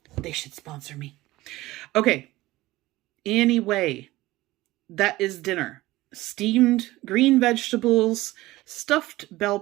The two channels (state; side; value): quieter; left; 18.2 dB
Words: sponsor me. Okay, anyway, that is dinner. Steamed green vegetables, stuffed bell